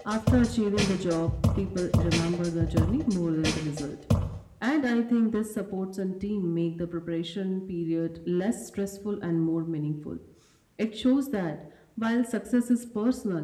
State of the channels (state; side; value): identical; both; correlation 1.00